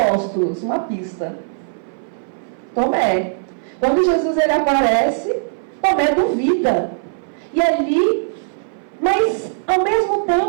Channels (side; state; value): left; silent; 60 dB below the other